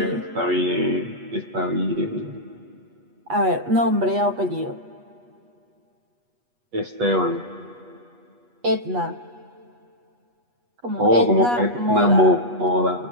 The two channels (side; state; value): left; late; 8.3 ms